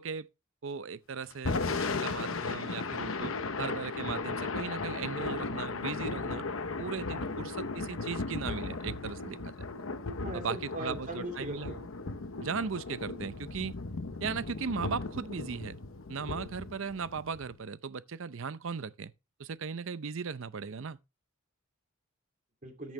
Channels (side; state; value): both; normal; correlation 0.09